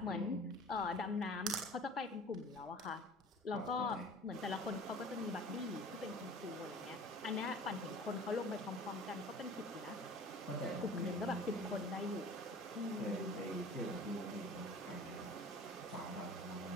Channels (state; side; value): normal; both; correlation 0.44